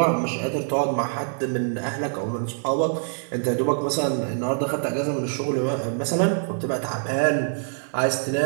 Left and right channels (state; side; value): silent; left; digital silence